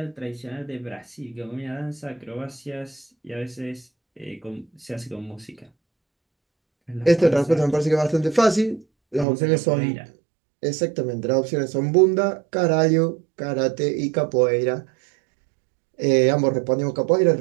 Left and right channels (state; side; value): drops out; left; at 9.2 s